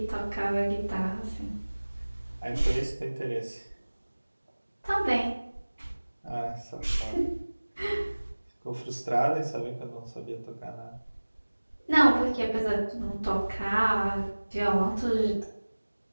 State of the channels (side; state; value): both; inverted; correlation -1.00